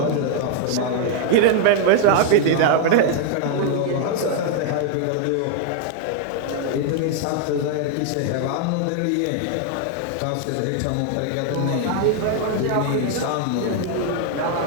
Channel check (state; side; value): different; both; correlation 0.00